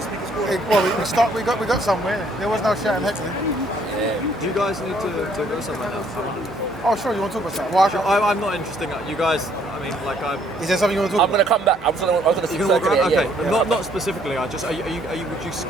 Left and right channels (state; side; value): normal; both; correlation 0.65